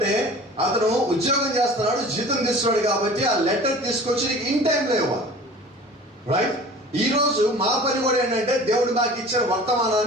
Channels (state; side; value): normal; both; correlation 0.43